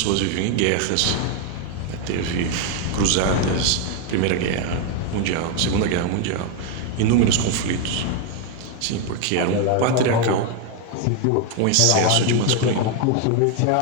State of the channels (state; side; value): different; both; correlation 0.01